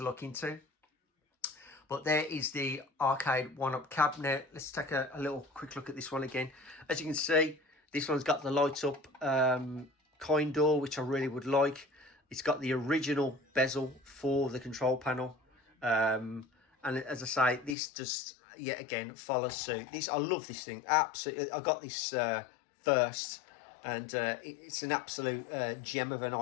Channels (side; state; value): right; drops out; at 17.8 s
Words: look into. But there is the arcade one-up cab. Now, let's take a little quick look at this one again. As you can see, this one's got the light-up coin door, which I really would like. It's got the original bezel for the control panel. And as I say, this just, yet again, follows suit. I love this thing. Absolutely. I got this first. And it's an absolute gem of an